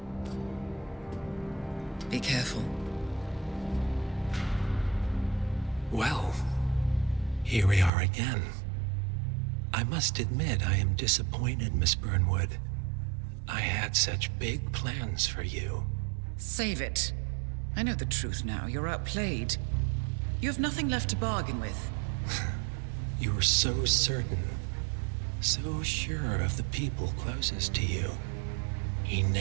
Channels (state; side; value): drops out; left; at 7.9 s